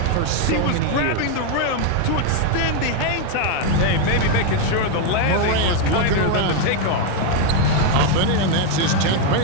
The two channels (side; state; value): both; different; correlation 0.01